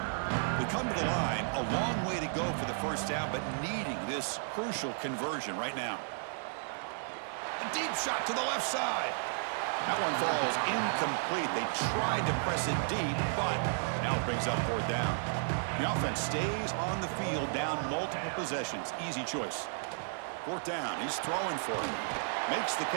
They come to the line, a long way to go for the first down, but needing this crucial conversion right now. A deep shot to the left side. That one falls incomplete. They tried to press it deep, but now it brings up fourth down. The offense stays on the field, down multiple possessions. Easy choice. Fourth down, he's throwing for it. Makes the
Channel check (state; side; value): silent; left; digital silence